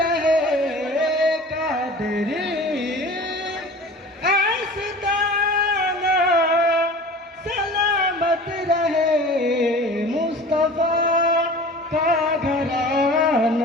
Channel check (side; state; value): both; normal; correlation 0.40